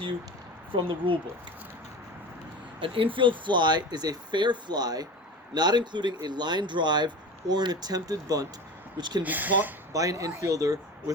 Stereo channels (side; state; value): both; normal; correlation 0.32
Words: you from the rule book. An infield fly is a fair fly, not including a line drive or an attempted bunt, which can be caught by an infielder